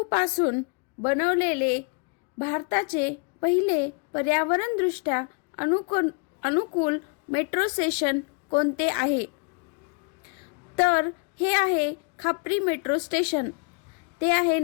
बनवलेले भारताचे पहिले पर्यावरणदृष्ट्या अनुकूल मेट्रो स्टेशन कोणते आहे? तर हे आहे खापरी मेट्रो स्टेशन. ते आहे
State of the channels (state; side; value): quieter; right; 34.1 dB